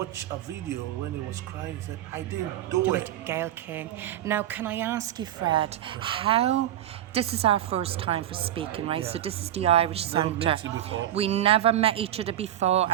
a video when he was crying. He said, "I didn't do Do it." it, Gail King. Now, can I ask you, Fred, this is our first time for speaking, right? So this is the Irish Never Centre. met you before. We never met each other before,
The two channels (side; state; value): left; quieter; 12.1 dB